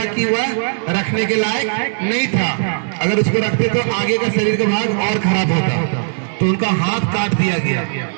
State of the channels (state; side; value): silent; left; digital silence